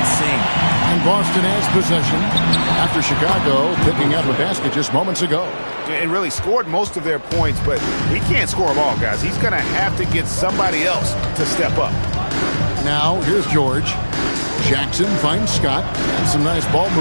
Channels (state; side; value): inverted; both; correlation -1.00